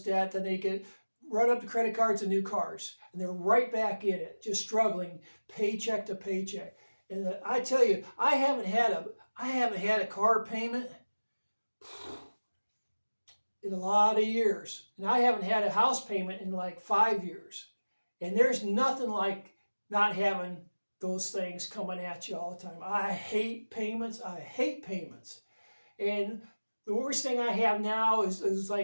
debt, then they run up the credit cards and new cars, and they're right back in it, just struggling paycheck to paycheck. And I tell you, I haven't had a car payment in a lot of years, and I haven't had a house payment in like 5 years. And there's nothing like not having those things coming at you all the time. I hate payments. And the worst thing I have now is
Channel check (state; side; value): inverted; both; correlation -1.00